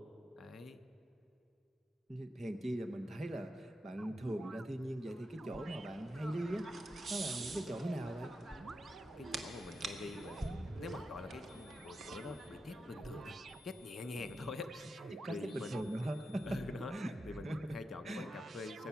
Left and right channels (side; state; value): both; normal; correlation 0.88